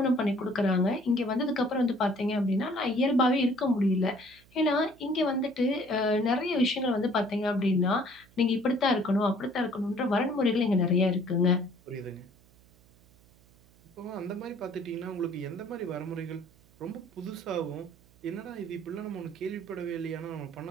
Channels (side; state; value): right; noise; hum, 28 dB below the sound